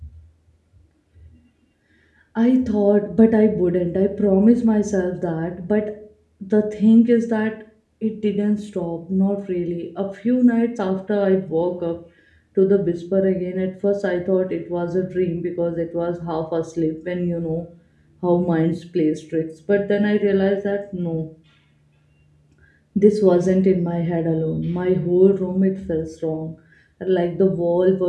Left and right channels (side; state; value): both; identical; correlation 1.00